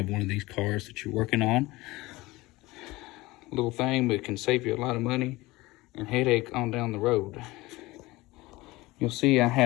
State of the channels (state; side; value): quieter; right; 20.5 dB